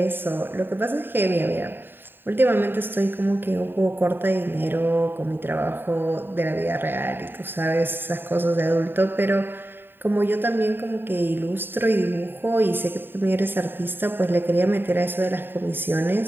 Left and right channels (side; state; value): left; late; 0.097 ms